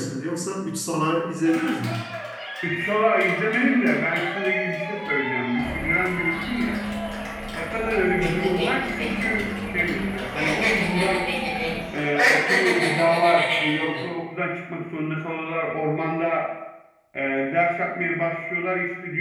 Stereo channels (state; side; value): identical; both; correlation 1.00